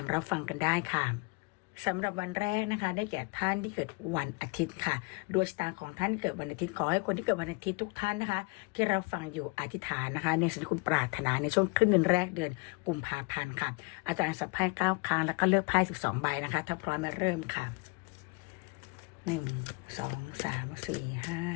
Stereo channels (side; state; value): right; quieter; 29.5 dB